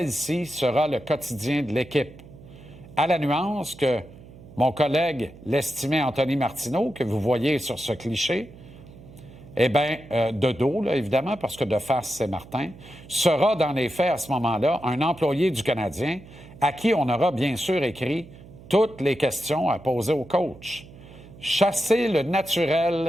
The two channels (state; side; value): noise; right; hum, 19 dB below the sound